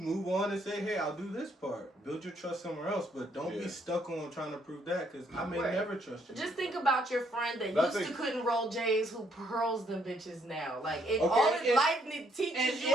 on and say, hey, I'll do this part. Build your trust somewhere else, but don't Yeah. be stuck on trying to prove that, because I may Right. never trust you. Just think about your friend that But I used to think- couldn't roll J's who pearls them bitches now. Like, Okay, all his and- life teaches and- you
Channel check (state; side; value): normal; both; correlation 0.70